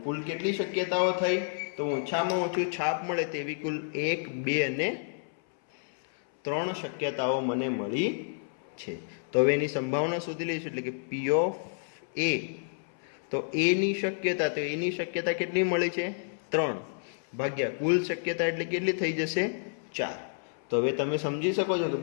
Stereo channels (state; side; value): silent; right; 58 dB below the other